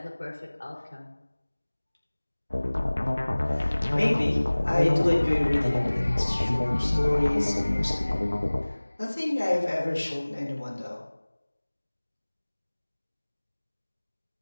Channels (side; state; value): both; inverted; correlation -1.00